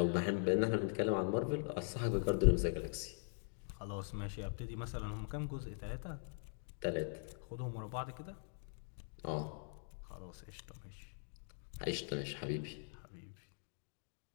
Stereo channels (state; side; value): silent; right; digital silence